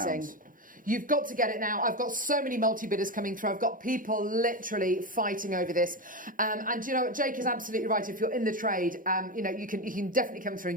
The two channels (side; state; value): both; normal; correlation 0.16